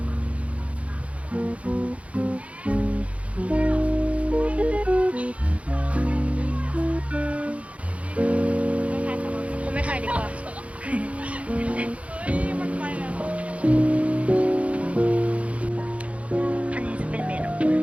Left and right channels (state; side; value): late; left; 0.064 ms